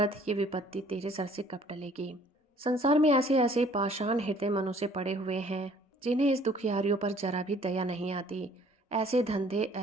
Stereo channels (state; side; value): normal; both; correlation 0.57